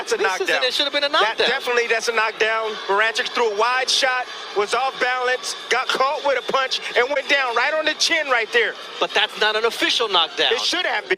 a knockdown. It should have been a knockdown. That's a knockdown. Barranchik threw a wide shot, was off balance, got caught with a punch, and went down right on the chin right there. But that's not an official knockdown. It should have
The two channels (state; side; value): identical; both; correlation 1.00